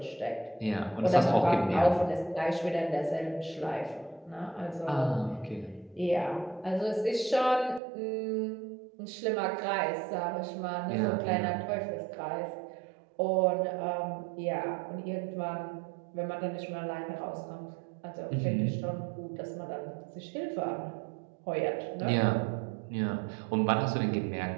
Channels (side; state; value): left; drops out; at 7.8 s